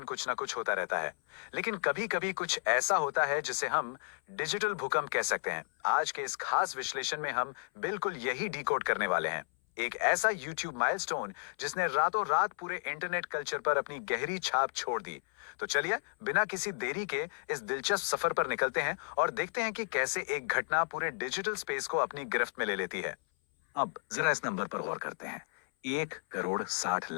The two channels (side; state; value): right; silent; 56 dB below the other